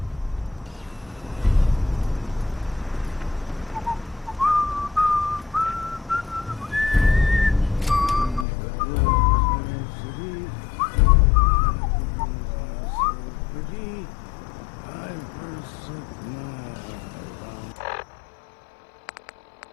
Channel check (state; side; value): drops out; right; at 8.5 s